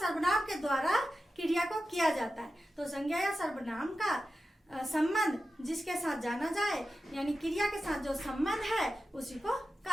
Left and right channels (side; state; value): both; normal; correlation 0.92